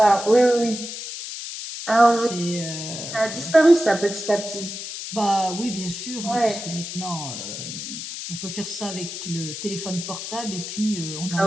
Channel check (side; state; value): left; noise; hiss, 8 dB below the sound